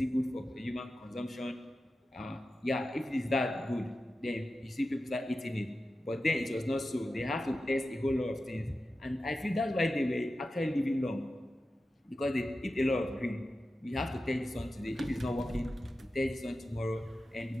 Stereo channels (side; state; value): both; normal; correlation 0.93